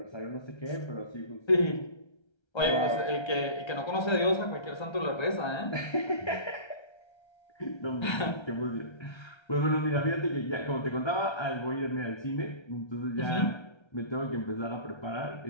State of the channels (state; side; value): late; right; 1.3 ms